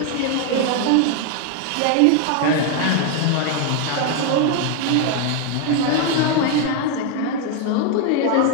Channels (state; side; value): different; both; correlation 0.01